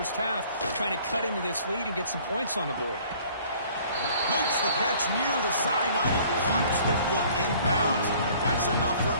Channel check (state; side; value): inverted; both; correlation -0.54